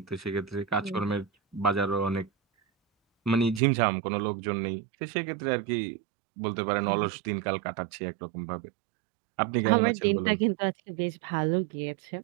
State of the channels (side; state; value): left; drops out; at 3.6 s